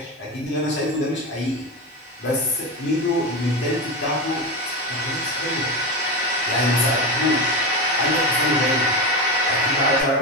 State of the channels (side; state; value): both; normal; correlation 0.18